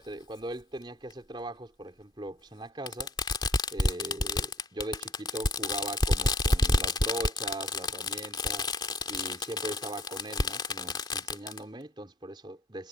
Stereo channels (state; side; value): normal; both; correlation 0.58